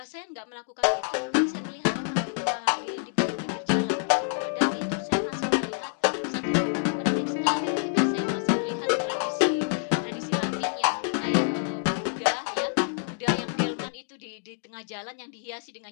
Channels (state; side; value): silent; right; digital silence